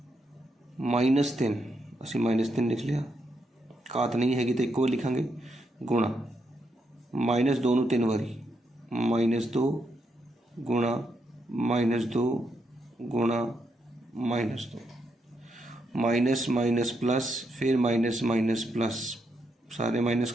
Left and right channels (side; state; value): both; normal; correlation 0.80